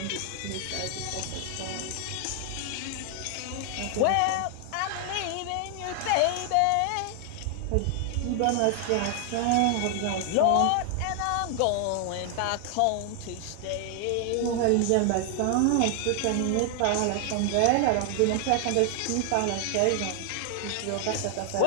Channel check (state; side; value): different; both; correlation 0.00